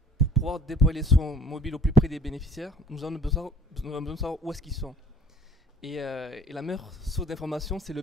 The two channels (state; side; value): normal; both; correlation 0.54